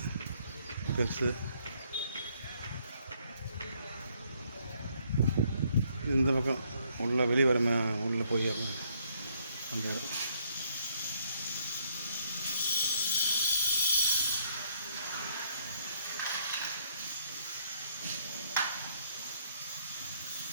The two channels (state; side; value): inverted; both; correlation -0.68